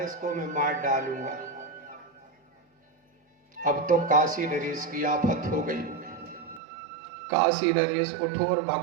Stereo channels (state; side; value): drops out; left; at 6.6 s